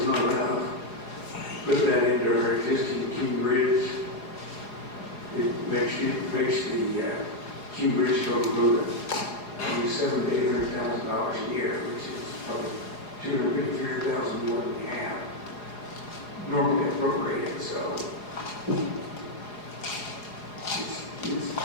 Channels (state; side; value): late; right; 4.8 ms